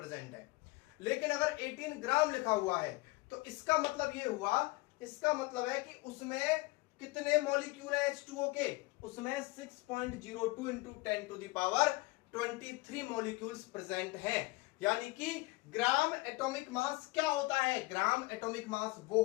है। लेकिन अगर 18 ग्राम लिखा हुआ है तो इसका मतलब ये हुआ, इसका मतलब है कि उसमें कितने मॉलिक्यूल है H2O के? उसमें 6.02 × 10⁻23 मॉलिक्यूल्स प्रेजेंट हैं। यानी कि ग्राम एटॉमिक मास क्या होता है? ग्राम एटॉमिक मास वो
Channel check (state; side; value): quieter; right; 22.9 dB